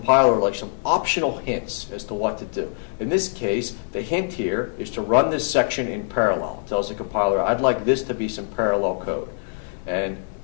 like some optional hints as to what to do. In this case, the hint here is to run this section in parallel. It tells the compiler, I'd like this to be some parallel code. And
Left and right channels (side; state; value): right; silent; digital silence